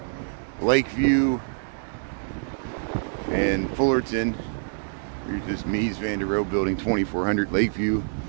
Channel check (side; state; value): left; silent; digital silence